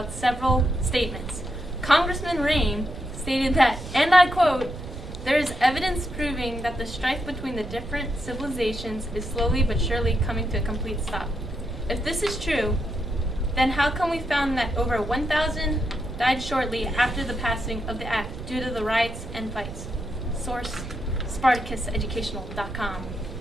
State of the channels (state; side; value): noise; right; rumble, 10 dB below the sound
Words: several statements. Congressman Rain stated that, and I quote, "There is evidence proving that the strife between the different civilizations is slowly but surely coming to a complete stop." If this is true, then how come we found that over 1,000 died shortly after the passing of the act due to the riots and fights? Source, SpartacusEducational.com.